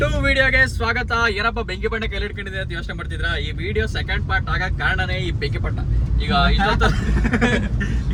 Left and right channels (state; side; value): identical; both; correlation 1.00